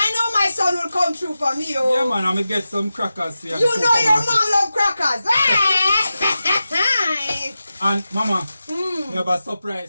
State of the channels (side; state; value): both; inverted; correlation -0.92